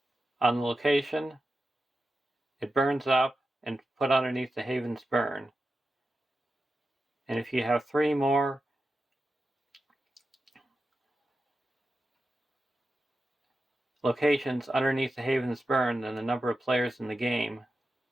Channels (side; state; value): both; normal; correlation 0.91